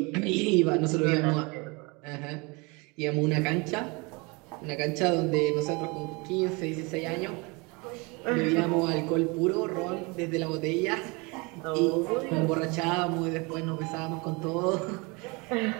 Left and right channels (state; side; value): quieter; left; 27.8 dB